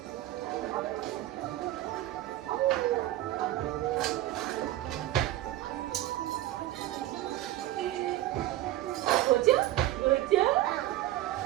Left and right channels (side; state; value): left; quieter; 14.7 dB